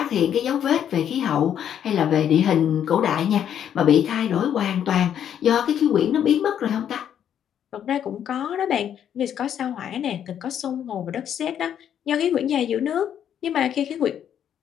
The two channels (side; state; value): right; quieter; 9.4 dB